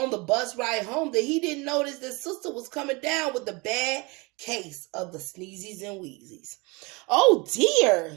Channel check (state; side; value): quieter; left; 26.9 dB